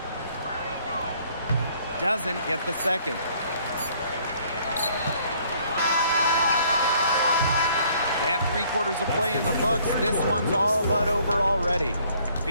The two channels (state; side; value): inverted; both; correlation -0.62